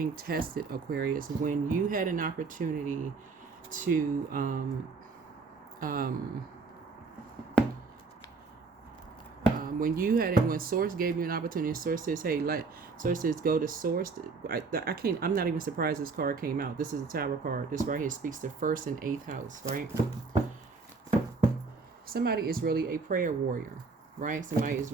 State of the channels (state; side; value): quieter; left; 4.4 dB